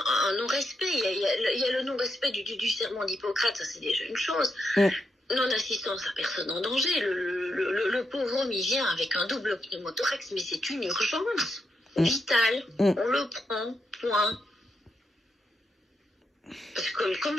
non-respect. Il y a le non-respect du serment d'Hippocrate, ça c'est déjà une chose. Non-assistance à personne en danger. Le pauvre homme, il vient avec un double pneumothorax, mais c'est une urgence vitale. On le prend, point. Parce que,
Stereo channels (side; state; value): both; normal; correlation 0.83